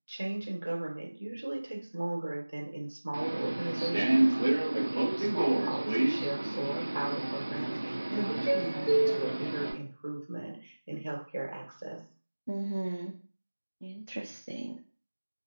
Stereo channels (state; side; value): inverted; both; correlation -1.00